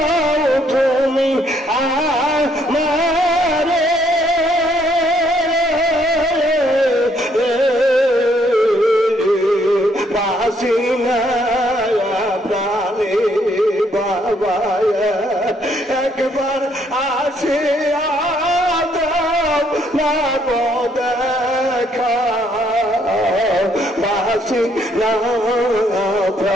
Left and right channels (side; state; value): both; normal; correlation 0.69